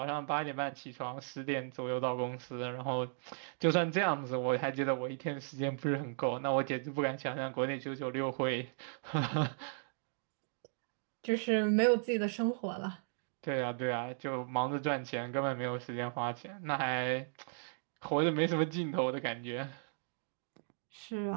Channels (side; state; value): left; silent; digital silence